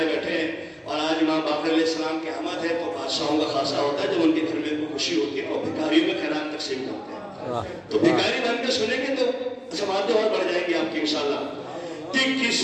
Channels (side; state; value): both; identical; correlation 1.00